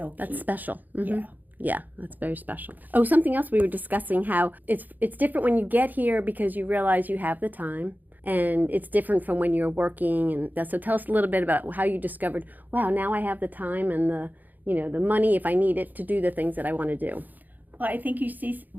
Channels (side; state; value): left; late; 0.084 ms